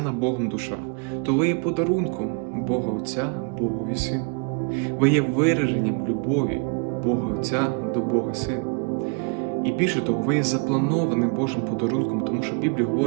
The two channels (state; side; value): quieter; left; 37.1 dB